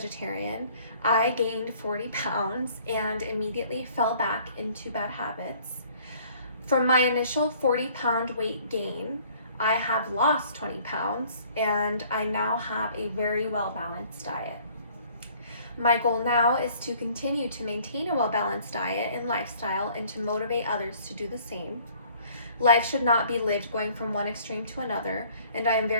I gained 40 pounds and immediately fell back into bad habits. From my initial 40-pound weight gain, I have lost 20 pounds and I now have a very well-balanced diet. My goal now is to continue to maintain a well-balanced diet and lifestyle and to motivate others to do the same. Life should not be lived going from one extreme to another, and I am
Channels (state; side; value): inverted; both; correlation -0.57